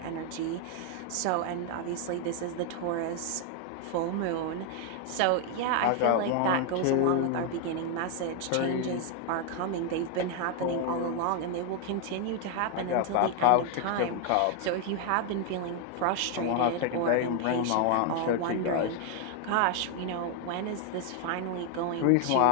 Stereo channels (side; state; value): both; different; correlation 0.00